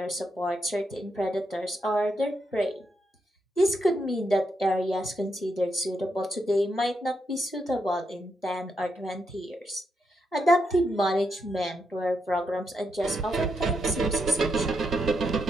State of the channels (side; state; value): both; normal; correlation 0.82